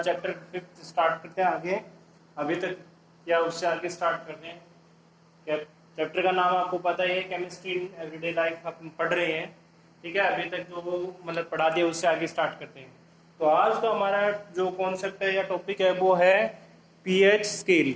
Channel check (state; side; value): identical; both; correlation 1.00